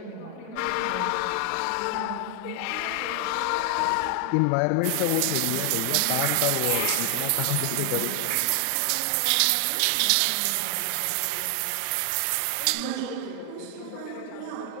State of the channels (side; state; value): both; different; correlation 0.00